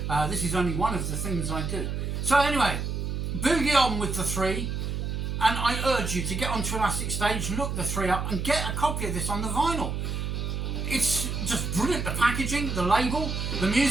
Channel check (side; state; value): right; noise; hum, 2 dB below the sound